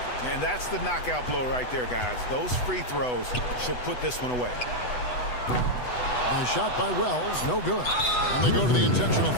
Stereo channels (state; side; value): late; right; 8.1 ms